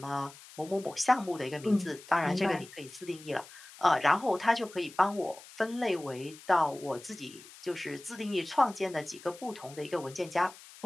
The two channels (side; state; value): left; noise; hiss, 19 dB below the sound